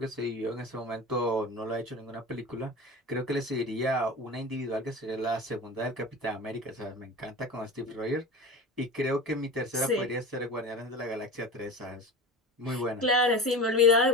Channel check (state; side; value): normal; both; correlation 0.30